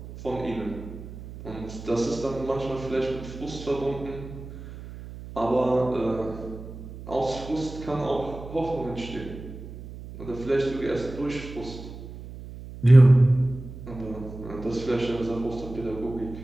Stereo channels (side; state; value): right; noise; hum, 13 dB below the sound